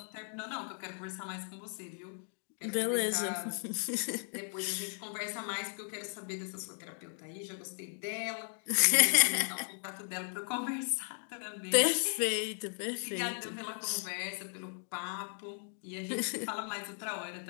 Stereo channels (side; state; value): right; silent; 54 dB below the other